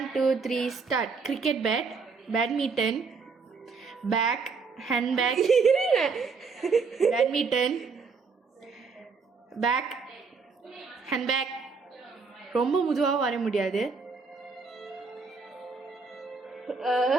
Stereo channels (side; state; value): left; quieter; 4.9 dB